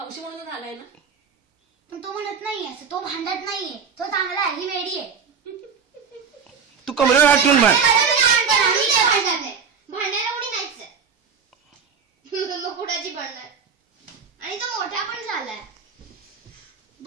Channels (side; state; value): left; quieter; 6.1 dB